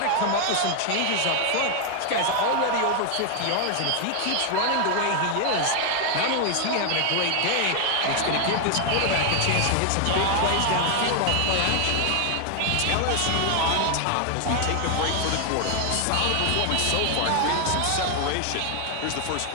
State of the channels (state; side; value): different; both; correlation 0.00